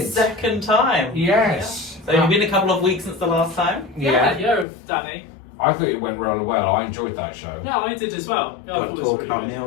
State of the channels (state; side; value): drops out; right; at 4.7 s